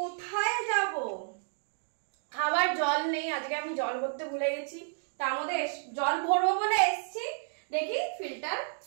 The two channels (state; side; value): silent; left; digital silence